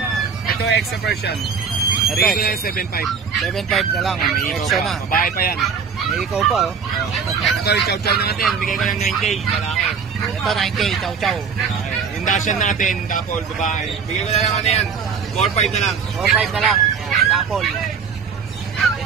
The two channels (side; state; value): left; quieter; 6.2 dB